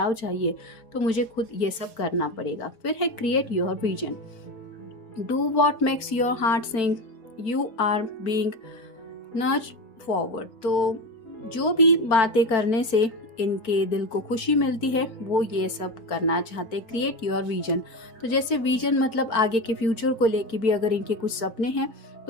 चाहिए तो मुझे खुद ये सब करना पड़ेगा। फिर है create your vision, do what makes your heart sing, you are being nurtured forward. तो जो भी बातें करने से इनके दिल को खुशी मिलती है वो ये सब करना चाहते। क्रिएट योर विजन, तो जैसे विजन मतलब आगे के फ्यूचर को लेके भी अगर इनके कुछ सपने हैं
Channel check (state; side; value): late; right; 4.5 ms